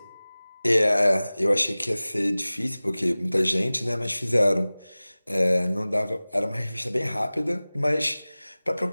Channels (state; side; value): inverted; both; correlation -0.98